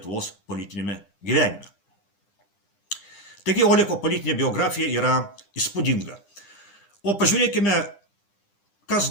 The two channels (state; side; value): late; right; 9.9 ms